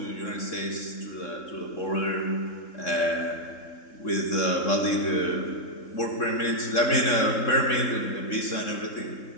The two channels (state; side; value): late; right; 3.6 ms